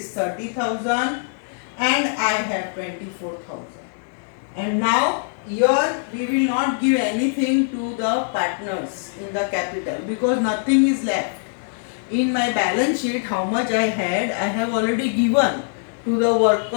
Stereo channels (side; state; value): right; silent; 64 dB below the other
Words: 30,000 and I have 24,000. And now here we will not give anything to the partners in the capital, because nothing is left. In my balance sheet, how much I had, I have already given to the